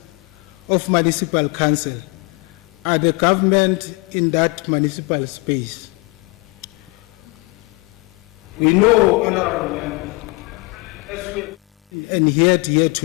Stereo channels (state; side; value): quieter; right; 26.3 dB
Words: of municipal council are the government in that municipal space. We know, Honorable Member, and here